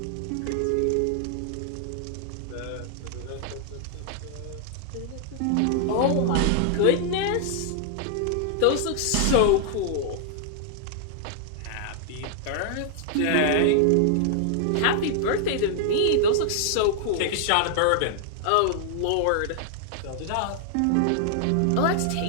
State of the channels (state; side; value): different; both; correlation -0.01